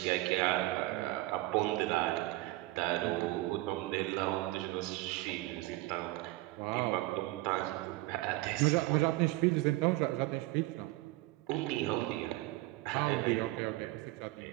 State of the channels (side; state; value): left; quieter; 19.1 dB